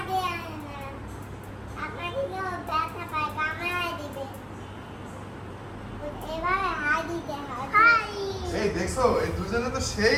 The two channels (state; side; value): identical; both; correlation 1.00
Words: এই দেখছো, এই দুজনে তো